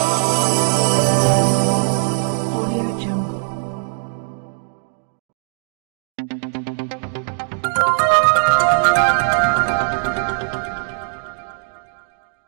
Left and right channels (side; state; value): left; silent; digital silence